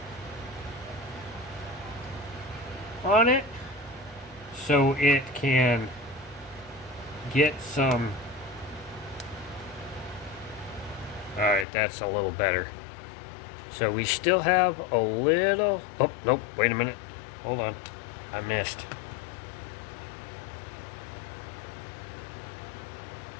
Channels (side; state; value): right; drops out; at 11.7 s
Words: on it, so it can get some... Alright, that's a little better. So we still have a little... Oh, nope, wait a minute. Hold on. I missed.